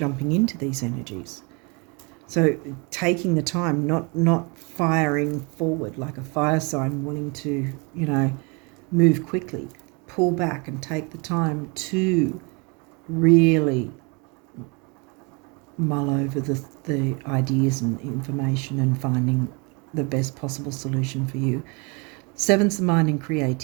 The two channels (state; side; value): quieter; left; 30.9 dB